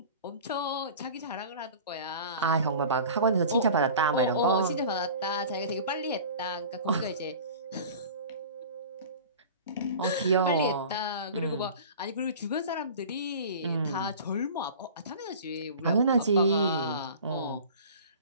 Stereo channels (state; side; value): inverted; both; correlation -0.40